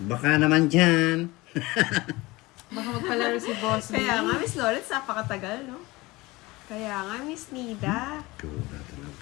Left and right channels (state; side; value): quieter; right; 21.5 dB